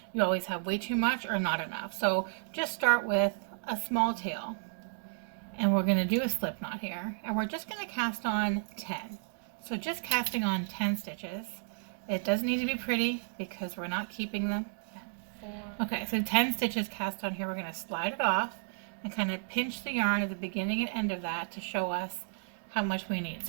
you always have way too much or not enough. So just start with a small tail. And we're going to do a slip knot here, and we're just going to cast on 10. So just casting on 10 stitches. It doesn't need to be pretty because we're not keeping them. Okay, so 10 stitches cast on here. We're going to slide it off and kind of pinch the yarn at the beginning and end of that to show us how much we need.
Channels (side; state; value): left; silent; digital silence